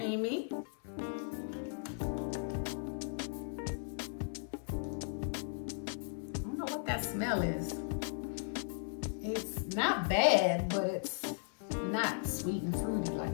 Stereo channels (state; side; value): silent; right; 53 dB below the other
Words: I don't know what that smell is. It's not bad, but it's not sweet and fruity